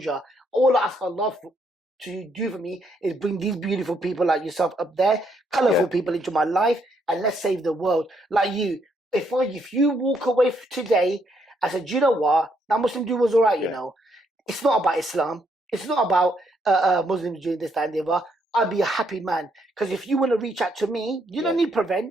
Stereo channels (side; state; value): both; normal; correlation 0.73